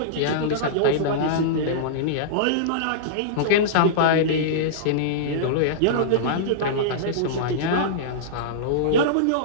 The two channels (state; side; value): different; both; correlation -0.03